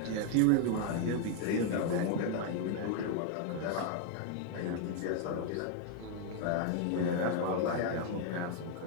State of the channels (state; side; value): different; both; correlation 0.01